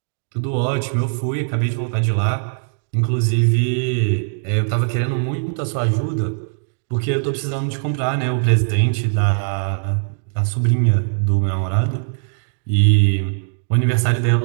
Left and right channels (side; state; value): left; silent; 66 dB below the other